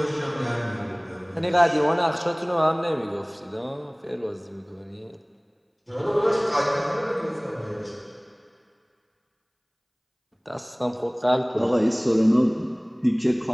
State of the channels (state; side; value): identical; both; correlation 1.00